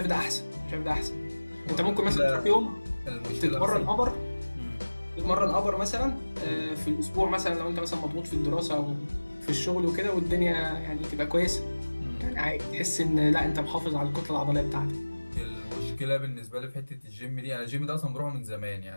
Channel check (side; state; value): both; inverted; correlation -1.00